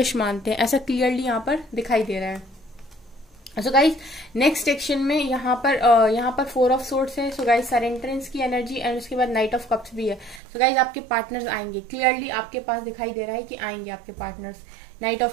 मानते हैं, ऐसा क्लियरली यहाँ पर दिखाई दे रहा है। सो गाइस नेक्स्ट सेक्शन में यहाँ पर 4 ऑफ सोर्ड्स है। सो गाइस सरेंडरेंस की एनर्जी एंड उसके बाद नाइट ऑफ कप्स भी है। सो गाइस आपके पार्टनर्स आएंगे, क्लियरली आपके पास दिखाई दे रहा है कि आएंगे आपके partners. Night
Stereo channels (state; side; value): drops out; left; at 10.4 s